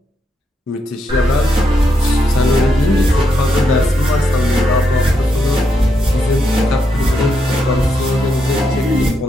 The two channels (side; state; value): both; normal; correlation 0.80